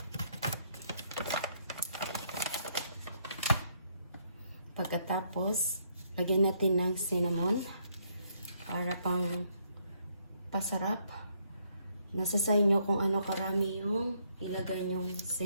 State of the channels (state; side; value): inverted; both; correlation -0.71